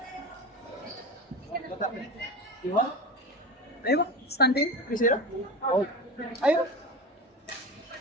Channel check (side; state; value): both; normal; correlation 0.27